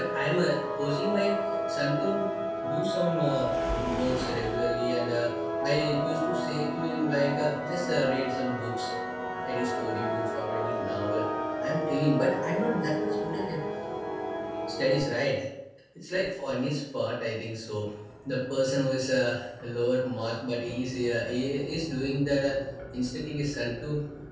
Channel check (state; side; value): identical; both; correlation 1.00